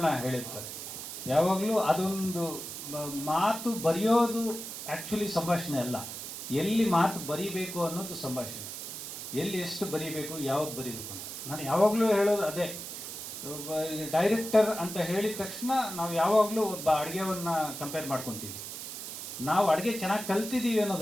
ಹೇಳಿರ್ತಾರೆ. ಯಾವಾಗಲೂ ಅದೊಂದು ಮಾತು ಬರೆಯೋದು ಆ್ಯಕ್ಚುಲಿ ಸಂಭಾಷಣೆ ಅಲ್ಲ, ಎಲ್ಲಿ ಮಾತು ಬರೀಬೇಕು ಅನ್ನೋದು ಸಂಭಾಷಣೆ. ಎಲ್ಲಿ ಎಷ್ಟು ಬರೀಬೇಕು, ಯಾವ್ದು ಬರೀಬೇಕು ಅಂತ ನಾನು ಯಾವಾಗಲೂ ಹೇಳೋದು ಅದೇ. ಡೈರೆಕ್ಟರ್ ಅಂತ ಹೇಳಿದ ತಕ್ಷಣ ನಾವು ಯಾವಾಗಲೂ ಒಬ್ಬ ಅಡುಗೆವನ್ನು ಕಂಪೇರ್ ಮಾಡ್ಕೊತೀವಿ. ನಾವು ಅಡುಗೆ ಚೆನ್ನಾಗಿ ಕಲ್ತಿದ್ದೀವಿ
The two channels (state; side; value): noise; right; hiss, 8 dB below the sound